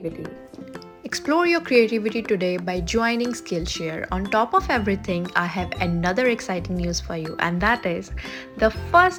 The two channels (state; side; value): identical; both; correlation 1.00